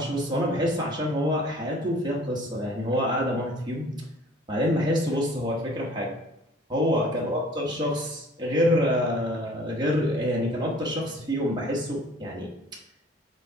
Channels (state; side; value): normal; both; correlation 0.51